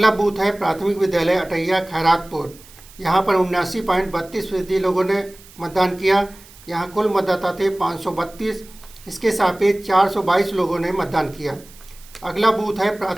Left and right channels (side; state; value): right; noise; hiss, 23 dB below the sound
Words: बूथ है प्राथमिक विद्यालय अटैया खैरातपुर। यहाँ पर 79.32% लोगों ने मतदान किया। यहाँ कुल मतदाता थे 532। इसके सापेक्ष 422 लोगों ने मतदान किया। अगला बूथ है